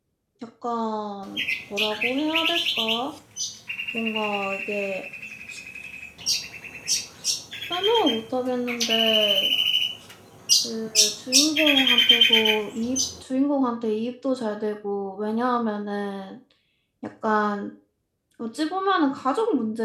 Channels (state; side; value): identical; both; correlation 1.00